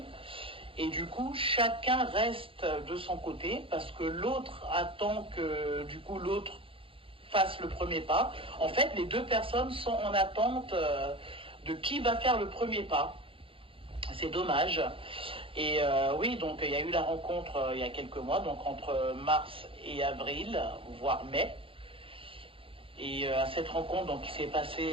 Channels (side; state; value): left; late; 0.26 ms